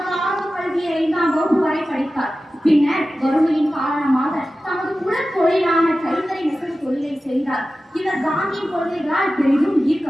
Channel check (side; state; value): both; normal; correlation 0.94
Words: ஆரம்ப கல்வியை 5ஆம் வகுப்பு வரை படித்தார். பின்னர் வறுமையின் காரணமாக தமது குலத் தொழிலான கைத்தறி நெசவு தொழிலை செய்தார். இவர் காந்தியின் கொள்கைகளால் பெரிதும்